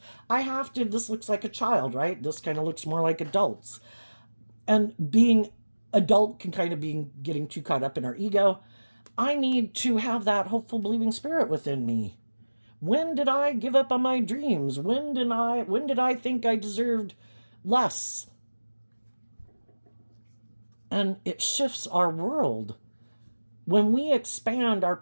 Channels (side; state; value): both; inverted; correlation -1.00